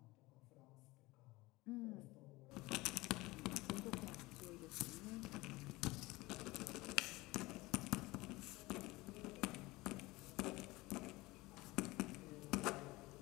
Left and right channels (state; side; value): quieter; right; 20.9 dB